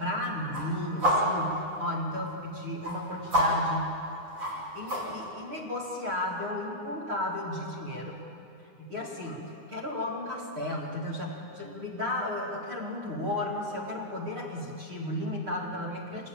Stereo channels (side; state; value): left; late; 9.7 ms